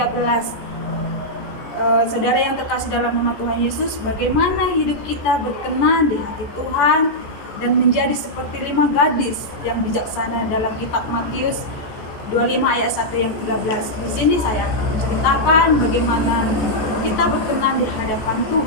Saudara yang terkasih dalam nama Tuhan Yesus, bagaimana hidup kita berkenan di hati Tuhan dan menjadi seperti 5 gadis yang bijaksana dalam kitab Matius 25 ayat 1 yang 13. Di sini saya akan menceritakan bagaimana kita berkenan di hadapan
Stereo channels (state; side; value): late; right; 14 ms